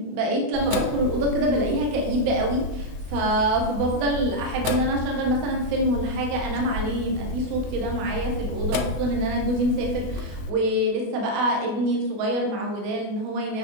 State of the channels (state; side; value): late; left; 24 ms